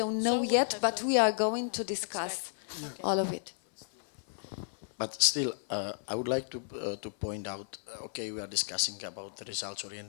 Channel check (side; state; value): right; silent; 56 dB below the other